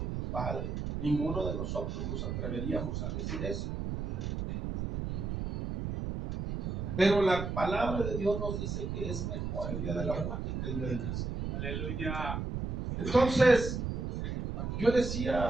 tu padre. Ninguno de nosotros nos atreveríamos a decir eso. Pero la palabra de Dios nos dice que es mejor el día de la muerte que el día del nacimiento. Aleluya. Entonces, yo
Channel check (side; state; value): right; noise; rumble, 3 dB below the sound